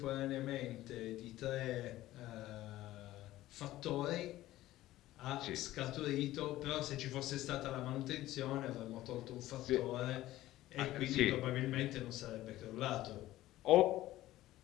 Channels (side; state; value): right; quieter; 15.5 dB